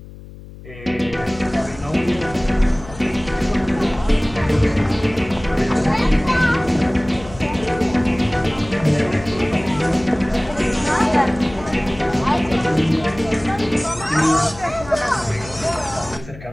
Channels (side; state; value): left; noise; hum, 17 dB below the sound